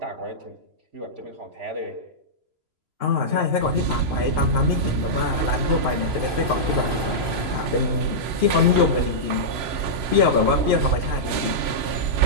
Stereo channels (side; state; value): left; late; 3.0 ms